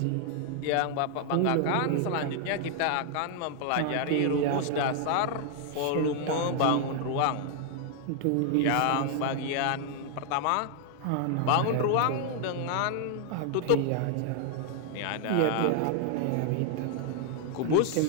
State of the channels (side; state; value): both; different; correlation 0.00